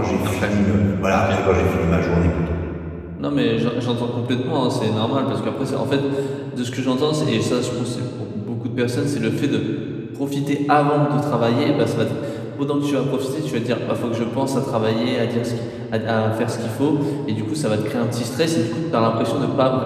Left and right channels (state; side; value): identical; both; correlation 1.00